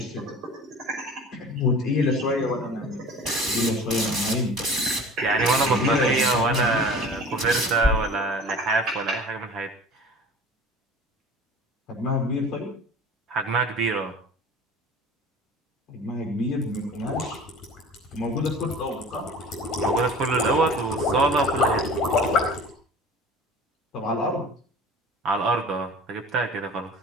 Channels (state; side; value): normal; both; correlation 0.41